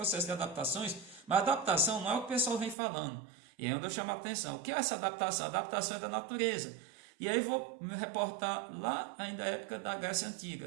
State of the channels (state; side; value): drops out; left; at 2.8 s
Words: de adaptações, mas a adaptação não é o que o pessoal vem falando. E aí onde eu chamo a atenção. O que é essa adaptação? A adaptação é da natureza. E aí vou me reportar lá ainda na época da Grécia